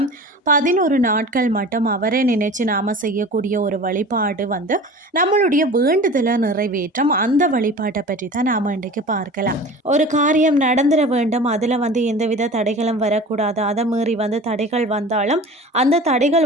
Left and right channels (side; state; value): both; normal; correlation 0.38